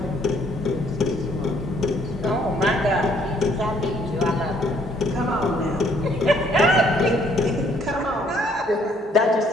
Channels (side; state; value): both; normal; correlation 0.65